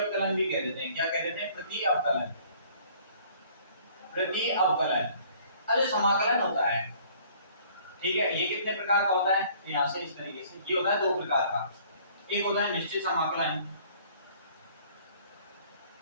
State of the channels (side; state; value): both; inverted; correlation -0.56